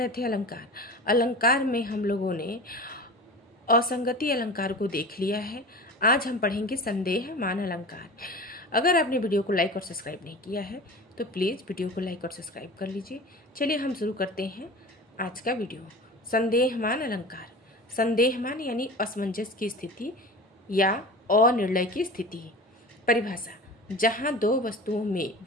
थे अलंकार। अलंकार में हम लोगों ने असंगति अलंकार को देख लिया है। आज हम पढ़ेंगे संदेह मान अलंकार। अगर आपने वीडियो को लाइक और सब्सक्राइब नहीं किया है तो प्लीज़ वीडियो को लाइक और सब्सक्राइब कर लीजिए। चलिए हम शुरू करते हैं आज का वीडियो। संदेह मान अलंकार। संदेह मान यानी असमंजस की स्थिति या अनिर्णय की स्थिति। परिभाषा: जहाँ दो वस्तुओं में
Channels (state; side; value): normal; both; correlation 0.35